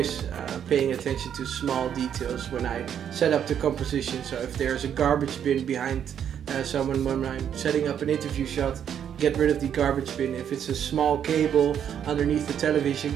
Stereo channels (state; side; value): quieter; left; 8.9 dB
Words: paying attention to small details when I set up the composition. So if there's a garbage bin behind someone when I'm setting up an interview shot, get rid of the garbage bin. If it's a small cable underneath the television,